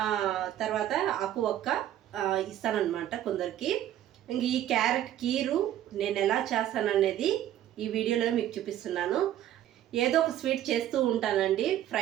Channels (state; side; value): quieter; left; 12.0 dB